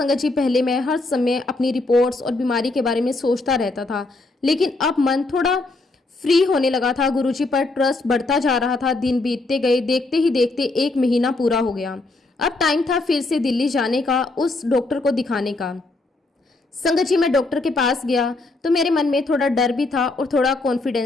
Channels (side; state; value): right; quieter; 3.2 dB